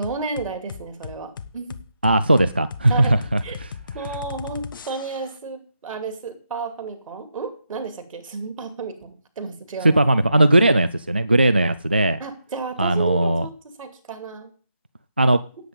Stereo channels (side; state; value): both; inverted; correlation -0.83